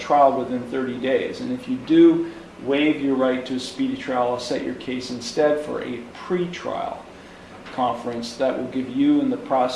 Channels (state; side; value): identical; both; correlation 1.00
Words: within 30 days. And if you do waive your right to a speedy trial, I'll set your case instead for a pre-trial conference that will give you and the